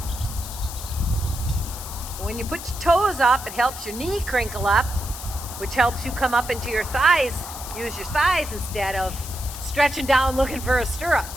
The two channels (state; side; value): noise; left; hiss, 11 dB below the sound